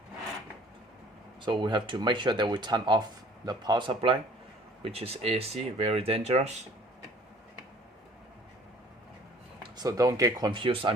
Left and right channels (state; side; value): normal; both; correlation 0.53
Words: So we have to make sure that we turn off the power supply, which is AC, very dangerous. So don't get confused,